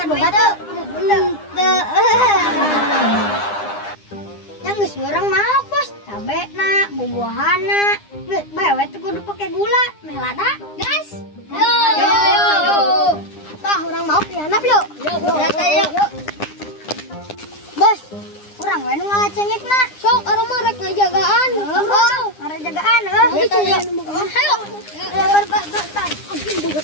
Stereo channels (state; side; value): late; right; 9.8 ms